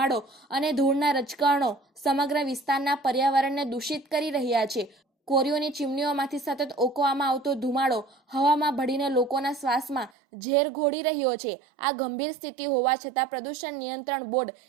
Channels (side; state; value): left; drops out; at 10.1 s